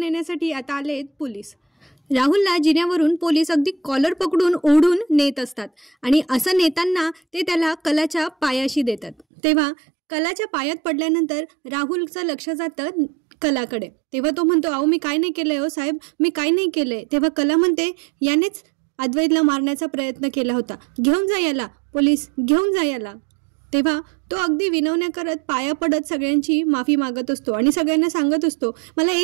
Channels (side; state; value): left; drops out; at 9.2 s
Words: आता आले पोलीस. राहुलला जिन्यावरून पोलीस अगदी कॉलर पकडून ओढून नेत असतात आणि असं नेताना ते त्याला कलाच्या पायाशी देतात. तेव्हा कलाच्या पायात पडल्यानंतर राहुलचं लक्ष जातं कलाकडे. तेव्हा तो म्हणतो, अहो मी काय नाही केलंय हो साहेब, मी काय नाही केलंय. तेव्हा कला म्हणते, यानेच अद्वैतला मारण्याचा प्रयत्न केला होता, घेऊन जा याला, पोलीस घेऊन जा याला. तेव्हा तो अगदी विनवण्या करत पाया पडत सगळ्यांची माफी मागत असतो आणि सगळ्यांना सांगत असतो, मला